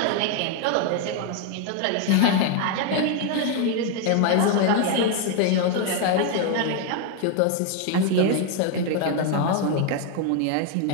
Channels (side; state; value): both; different; correlation 0.01